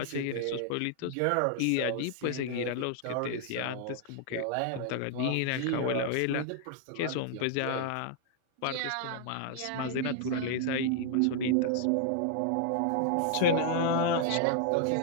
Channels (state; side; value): different; both; correlation -0.01